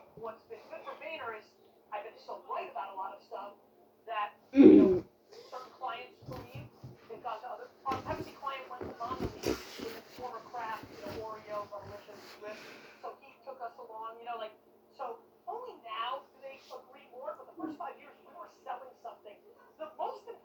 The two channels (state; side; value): identical; both; correlation 1.00